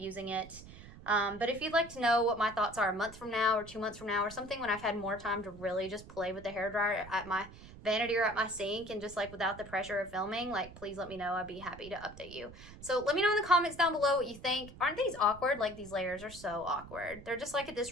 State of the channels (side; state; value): right; noise; rumble, 17 dB below the sound